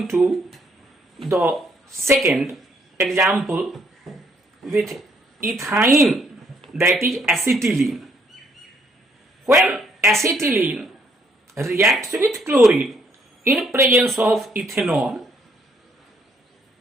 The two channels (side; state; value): both; normal; correlation 0.69